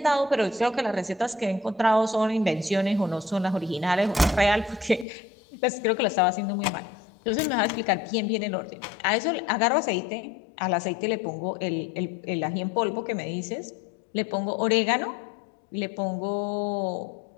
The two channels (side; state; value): right; drops out; at 5.1 s